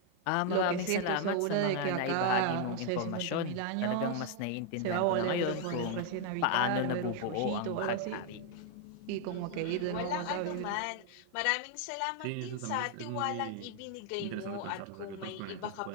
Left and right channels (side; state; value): both; different; correlation 0.01